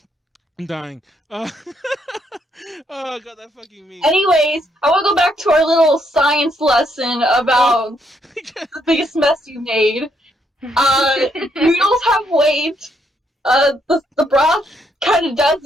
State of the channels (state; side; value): normal; both; correlation 0.74